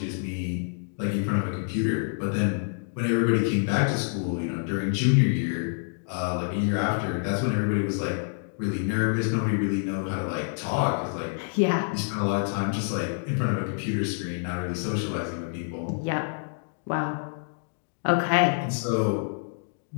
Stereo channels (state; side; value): silent; right; digital silence